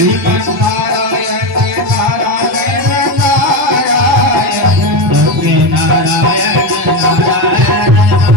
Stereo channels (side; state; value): both; normal; correlation 0.15